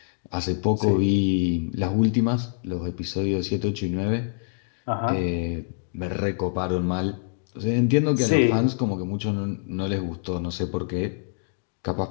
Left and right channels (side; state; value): right; silent; digital silence